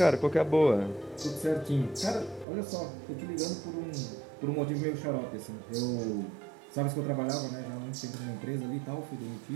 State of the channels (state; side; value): drops out; left; at 2.5 s